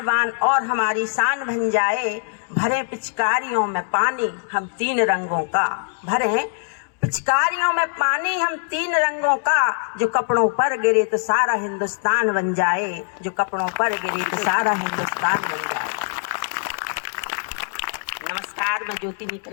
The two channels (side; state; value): right; silent; digital silence